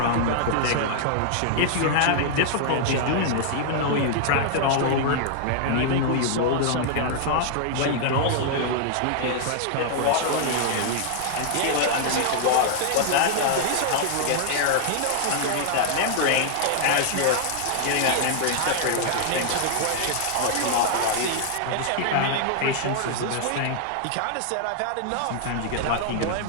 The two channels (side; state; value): both; different; correlation -0.01